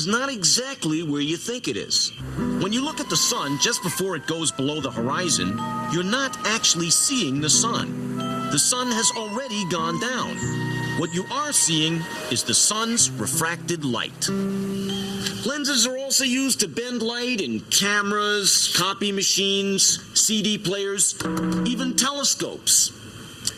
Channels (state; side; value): identical; both; correlation 1.00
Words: not exactly where you think it is. When you look at the sun just before it goes below the horizon, you're not actually seeing the sun. The sun has already gone down. What you are seeing is the sun's refracted light. Lenses are also used to bend light in cameras, copy machines, CD players, even telescopes.